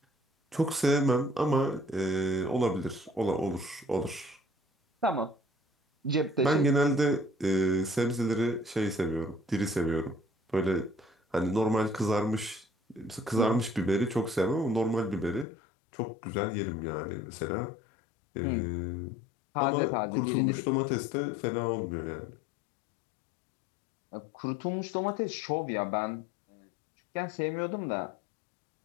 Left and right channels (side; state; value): right; drops out; at 15.5 s